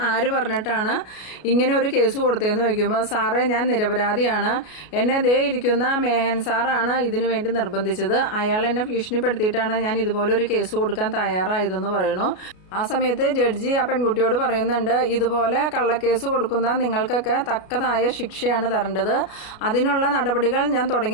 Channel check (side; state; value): right; late; 33 ms